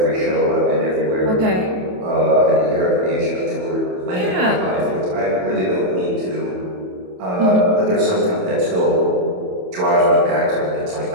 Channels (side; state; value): left; late; 27 ms